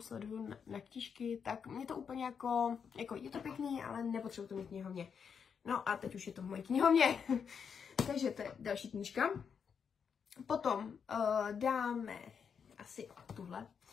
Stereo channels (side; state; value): right; quieter; 6.8 dB